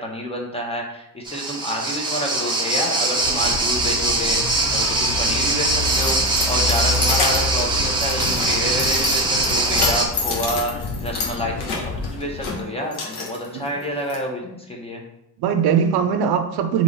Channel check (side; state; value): both; normal; correlation 0.15